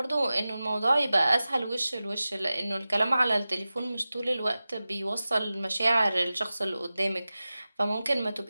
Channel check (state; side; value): inverted; both; correlation -0.95